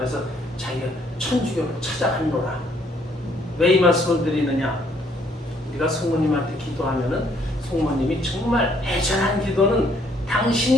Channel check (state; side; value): normal; both; correlation 0.66